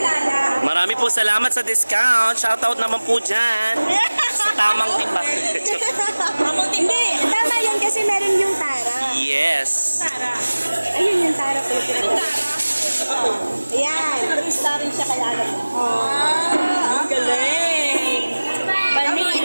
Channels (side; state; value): both; inverted; correlation -1.00